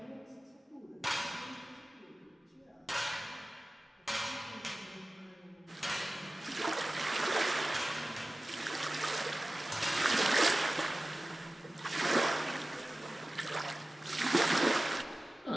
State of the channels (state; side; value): normal; both; correlation 0.97